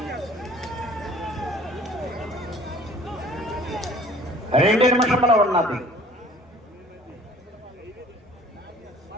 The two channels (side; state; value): both; normal; correlation 0.50